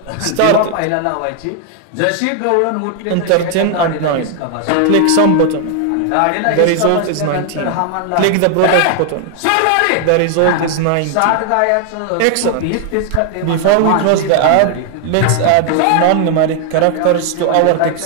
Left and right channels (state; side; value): different; both; correlation 0.00